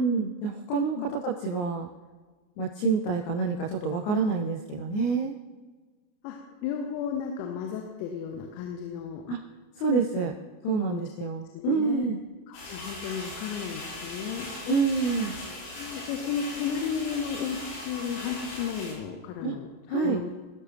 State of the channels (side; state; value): right; late; 28 ms